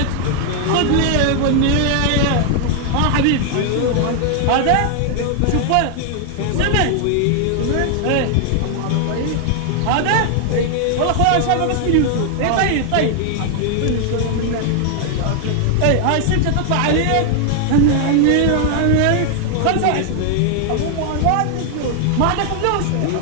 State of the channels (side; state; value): both; different; correlation 0.00